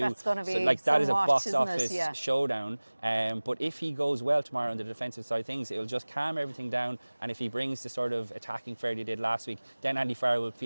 That's going to be so that is a box office it? showdown. But if he goes well tomorrow on the defensive side of things, it'll just calm everything down. And if he brings the sort of attacking flair he did last week, then Andy Farrell will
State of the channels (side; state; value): both; inverted; correlation -1.00